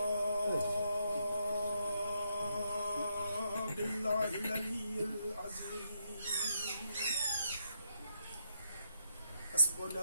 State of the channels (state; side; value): inverted; both; correlation -0.79